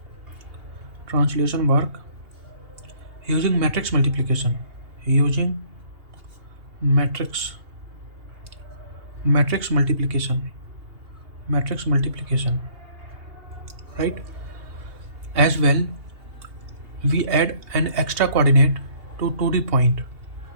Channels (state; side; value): late; left; 2.8 ms